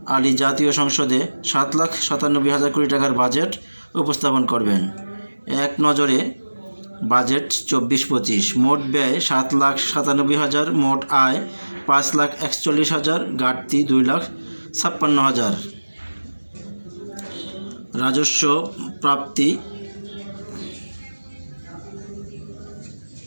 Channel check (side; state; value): both; inverted; correlation -1.00